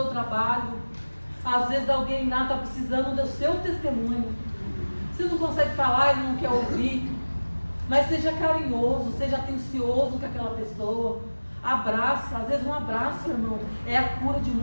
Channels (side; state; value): both; inverted; correlation -1.00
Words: trabalho. Às vezes alguém lá está precisando do seu testemunho. Você não consegue falar, ele não quer ouvir. Mas seja carinhoso, seja atencioso com aquela pessoa. Abraça, às vezes um abraço, irmão, é a cura de